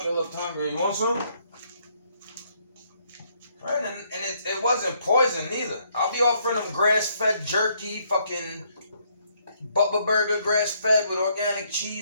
looked hungry, you want some? Right? And it wasn't poison either. I'll be offering them grass-fed jerky, fucking Butler Burger grass-fed with organic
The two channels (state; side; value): inverted; both; correlation -0.70